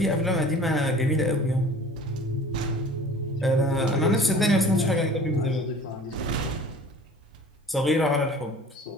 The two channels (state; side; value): normal; both; correlation 0.45